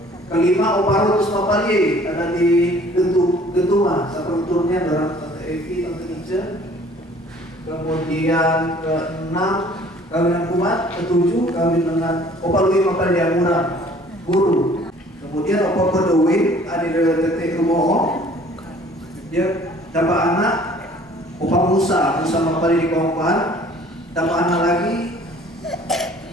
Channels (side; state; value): both; normal; correlation 0.53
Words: Kelima, Opa Rutus Mapaliye, ada di Gentumah, satu turunnya adalah Tante Evi, Tante Ica. Kemudian ke-6 kawinan kumat, ke-7 kawin dengan Opa Lui Mapaliye Amura guru. Kemudian Opa Bodowi ada di Tetek Rumoho, dia dapat anak Opa Musa Mapaliye di Kawangpoan, dapat anak lagi